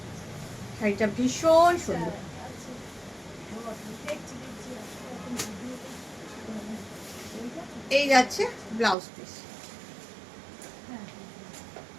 শাড়িটা ভীষণ সুন্দর, এই যাচ্ছে ব্লাউজ পিস,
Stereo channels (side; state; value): left; drops out; at 9.0 s